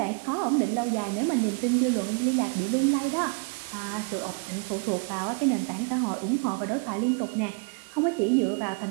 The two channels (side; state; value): left; quieter; 35.1 dB